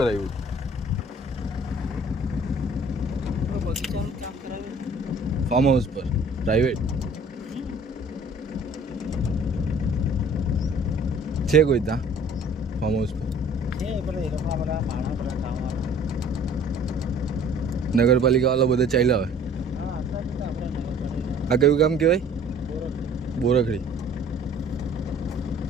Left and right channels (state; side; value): normal; both; correlation 0.51